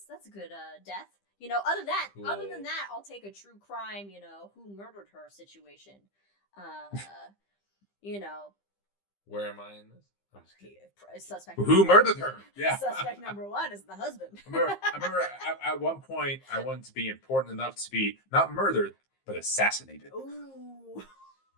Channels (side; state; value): right; late; 15 ms